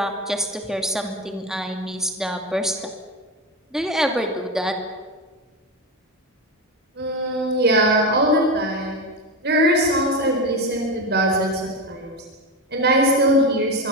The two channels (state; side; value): normal; both; correlation 0.17